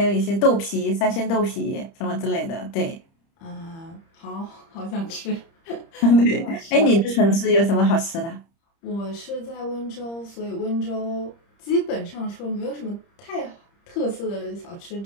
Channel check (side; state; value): right; late; 30 ms